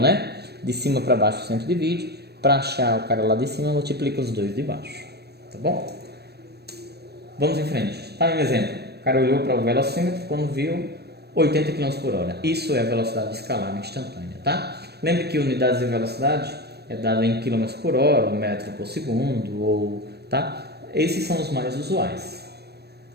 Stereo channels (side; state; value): left; late; 0.47 ms